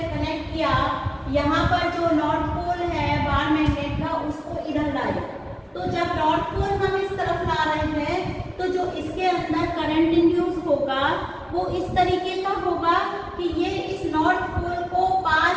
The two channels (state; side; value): identical; both; correlation 1.00